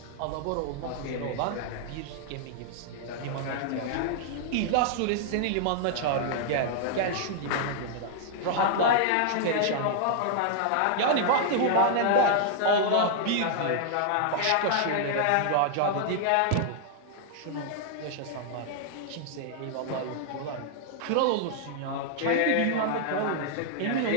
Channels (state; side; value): different; both; correlation -0.01